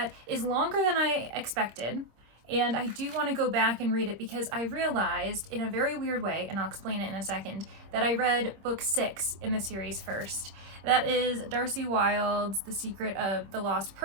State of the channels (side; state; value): left; late; 26 ms